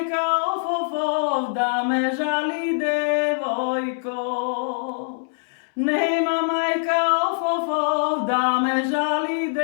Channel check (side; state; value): right; silent; 63 dB below the other